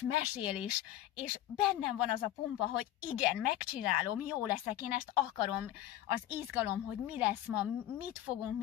mesél, és bennem van az a pumpa, hogy igen, megcsinálom, jó leszek, én ezt akarom, az izgalom, hogy mi lesz ma, mit fogunk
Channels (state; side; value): quieter; right; 13.1 dB